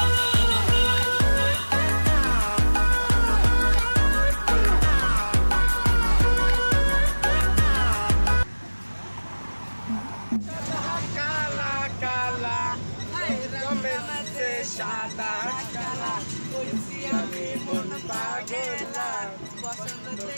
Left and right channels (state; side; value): inverted; both; correlation -1.00